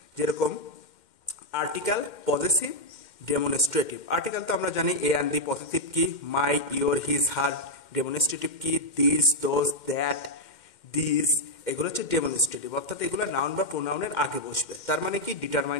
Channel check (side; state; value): right; late; 2.1 ms